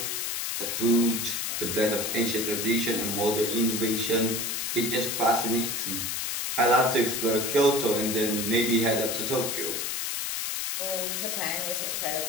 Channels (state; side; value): noise; left; hiss, 2 dB below the sound